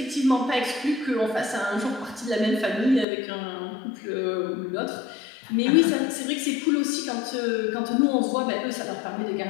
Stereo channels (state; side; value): drops out; right; at 3.1 s